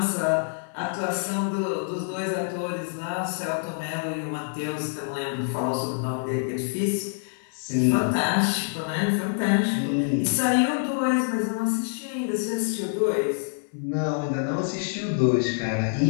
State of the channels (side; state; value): right; silent; 61 dB below the other